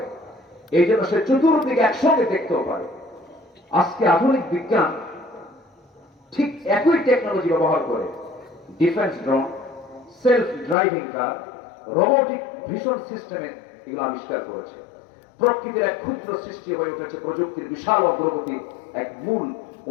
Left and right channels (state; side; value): drops out; right; at 10.8 s